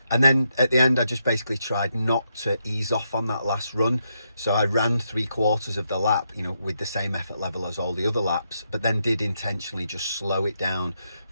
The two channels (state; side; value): inverted; both; correlation -0.81